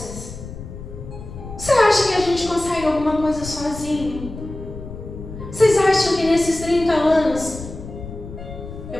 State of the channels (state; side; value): noise; left; rumble, 12 dB below the sound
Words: Você acha que a gente consegue alguma coisa sozinho? Vocês acham que nesses 30 anos,